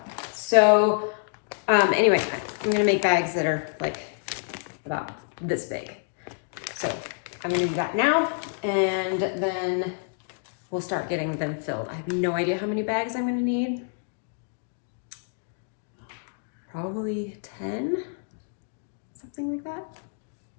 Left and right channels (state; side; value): silent; right; digital silence